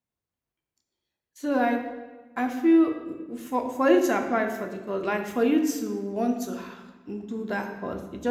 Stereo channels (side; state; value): both; identical; correlation 1.00